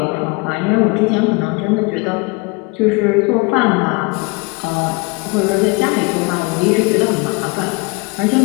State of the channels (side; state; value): right; quieter; 27.8 dB